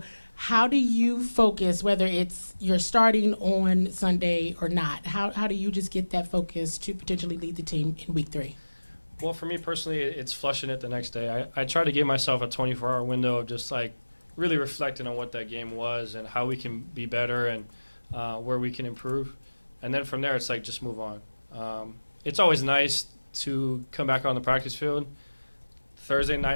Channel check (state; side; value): inverted; both; correlation -1.00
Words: how do you focus, whether it's you're starting on Sunday or not? How do you just get that focus to potentially lead the team in week 3? Well, for me personally, it's flushing it the next day. I try to give myself a 24-hour window of just like really reflecting on what that game was and how we can be better and where we can improve. And then from there, it's like just move on. It's always nice to come back on the practice field. Thursday